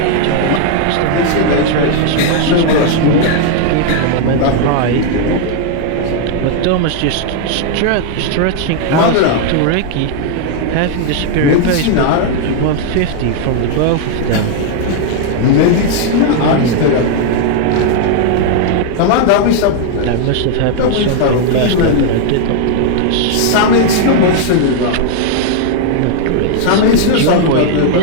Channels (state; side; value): different; both; correlation 0.00